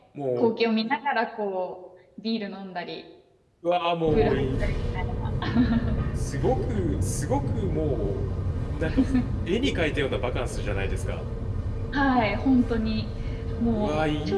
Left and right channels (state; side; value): identical; both; correlation 1.00